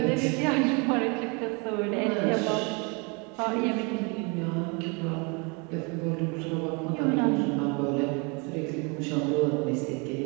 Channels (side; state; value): left; quieter; 31.6 dB